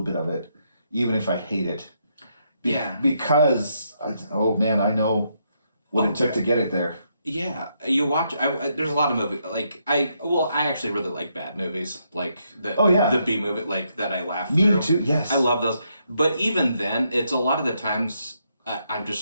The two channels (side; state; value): both; inverted; correlation -0.77